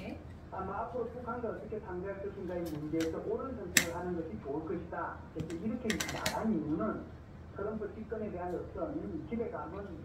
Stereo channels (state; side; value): identical; both; correlation 1.00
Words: 아마 앞으로 북한과 어떻게 상대할 것인가의 문제에서 옳은 선택을 하는 것이 좋을 것이다. 그래서 이렇게 말한 이유는 트럼프 집권에 대한 어떤 기대감은